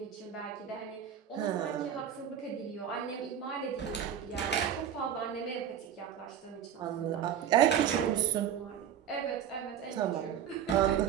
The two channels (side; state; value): left; quieter; 9.2 dB